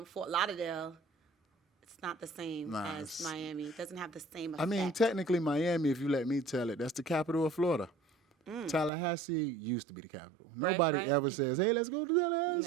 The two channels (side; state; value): left; drops out; at 8.9 s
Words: Fort Lauderdale, it's not the same as Miami. It doesn't have the same effect. I mean, technically, Miami, if you let me tell it, that's the capital of Florida. Tallahassee used to be the capital. Nobody ever says, hey, let's go to